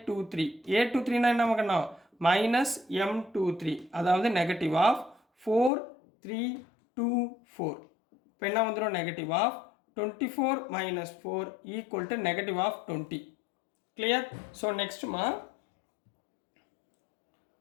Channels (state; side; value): drops out; right; at 5.7 s